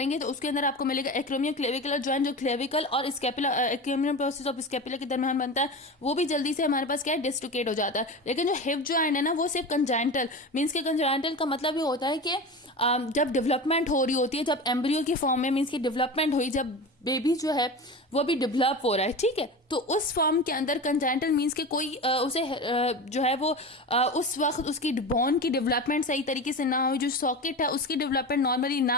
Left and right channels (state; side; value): normal; both; correlation 0.28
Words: तो उसके अंदर आपको मिलेगा एक्रोमियो क्लेविकुलर जॉइंट, जो क्लेविकल और स्कैपुला, एक्रोमियम प्रोसेस ऑफ स्कैपुला के दरमियान बनता है, वो भी जल्दी से हमारे पास क्या है, डिस्लोकेट हो जाता है। लेकिन जो हिप जॉइंट है ना, वो सिर्फ कंजाइंटल मीन्स के, कंजाइंटल का मतलब ये होता है कि जब डेवलपमेंट हो रही होती है, जब एम्ब्रियो की फॉर्म में मीन्स की डेवलपमेंट हुई, जब बेबी जो है वो भी डेवलप हो रहा है, ठीक है, तो उस फॉर्म के अंदर कंजाइंटल मीन्स के कोई उसे जो है वो उस वक्त उसकी बोन की डेवलपमेंट सही तरीके से ना हुई, जो सॉकेट है उसकी डेवलपमेंट नॉर्मली